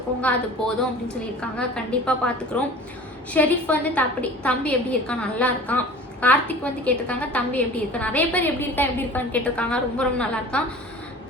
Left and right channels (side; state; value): both; normal; correlation 0.42